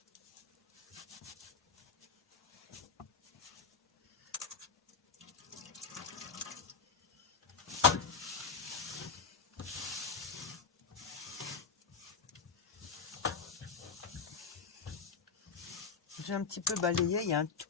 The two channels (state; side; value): quieter; right; 5.4 dB